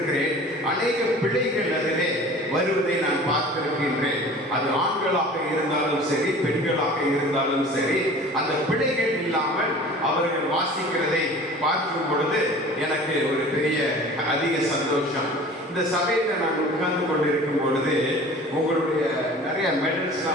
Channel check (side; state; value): both; normal; correlation 0.43